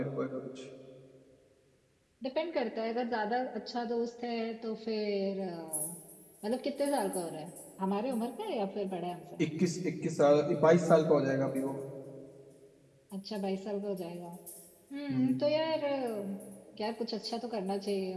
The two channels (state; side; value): identical; both; correlation 1.00